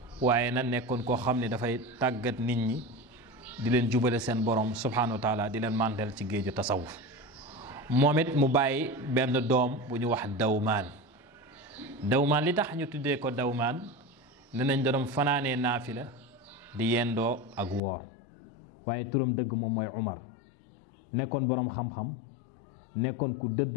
waaye na nekkoon koo xam ne dafay tàggat nit ñi di leen jubale seen borom subhanahu wa taala, di leen màndal ci géeju tasawuf. moom it mu bàyyi benn doom bu ñu wax Dawmaan li tax ñu tuddee ko Dawmaan, ne nañ doon fanaanee naafila di yendoo ak woor, waaye turam dëgg moom mooy Umar. nekkoon boroom xam-xam, nekkoon ku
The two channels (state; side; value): drops out; right; at 17.8 s